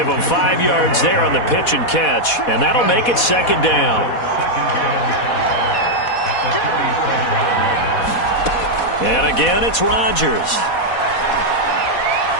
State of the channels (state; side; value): late; right; 4.1 ms